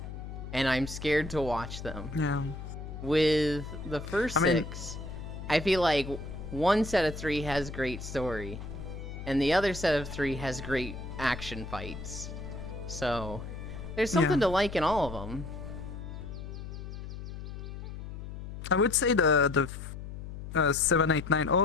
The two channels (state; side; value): noise; left; hum, 9 dB below the sound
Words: And I'm scared to watch them. Yeah. With the first I mean- 6, I feel like one set of 3 has great story, and the other set of 3 has great action fights. So, there's something Yeah. to like in all of them. I would say the 7, 8, 9